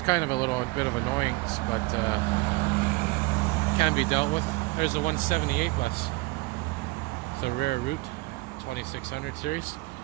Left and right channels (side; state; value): left; quieter; 23.9 dB